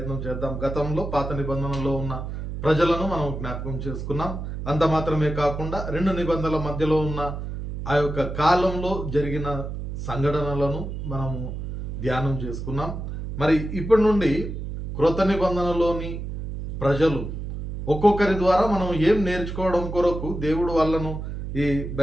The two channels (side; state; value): right; noise; hum, 6 dB below the sound